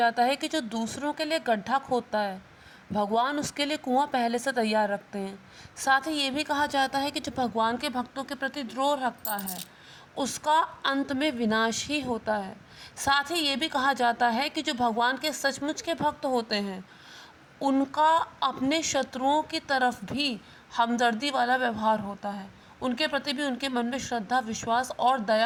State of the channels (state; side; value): identical; both; correlation 1.00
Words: है कि जो दूसरों के लिए गड्ढा खोदता है, भगवान उसके लिए कुआं पहले से तैयार रखते हैं। साथ ही ये भी कहा जाता है कि जो भगवान के भक्तों के प्रति द्रोह रखता है, उसका अंत में विनाश ही होता है। साथ ही ये भी कहा जाता है कि जो भगवान के सचमुच के भक्त होते हैं, उनका अपने शत्रुओं की तरफ भी हमदर्दी वाला व्यवहार होता है। उनके प्रति भी उनके मन में श्रद्धा, विश्वास और